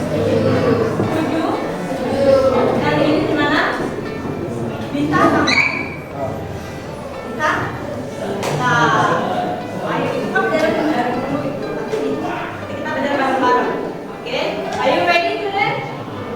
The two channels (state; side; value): identical; both; correlation 1.00